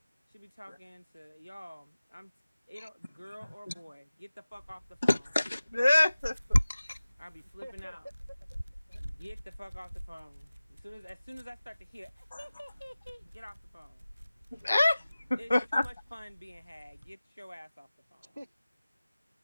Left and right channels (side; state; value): both; inverted; correlation -0.97